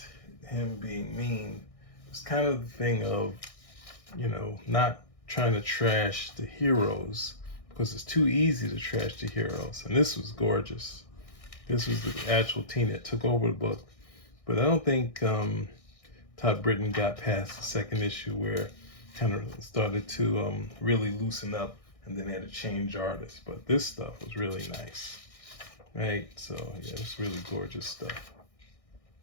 him being mean. It's kind of the thing of, not trying to trash the heroes, because it's too easy to trash the heroes. And this was gorgeous. This was the actual team that took over the book. But I don't think Todd Britton got past the second issue, where kind of started to really loosen up, and then they had to change artists. But this stuff was really nice, right? So yeah, it's really gorgeous stuff,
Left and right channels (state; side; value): late; right; 1.6 ms